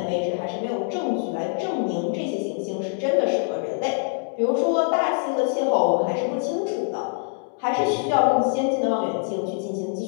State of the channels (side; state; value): right; silent; 60 dB below the other